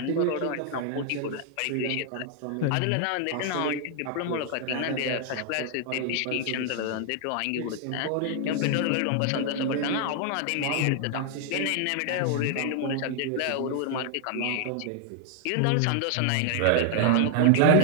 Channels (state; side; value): different; both; correlation 0.00